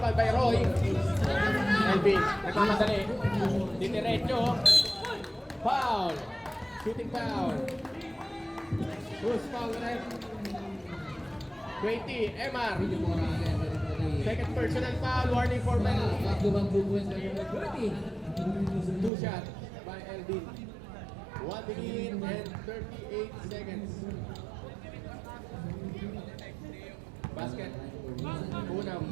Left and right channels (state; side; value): drops out; left; at 19.1 s